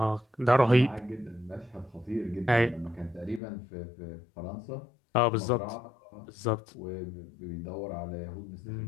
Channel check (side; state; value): right; drops out; at 3.4 s